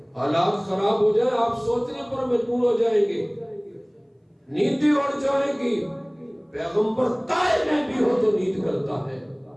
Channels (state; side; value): identical; both; correlation 1.00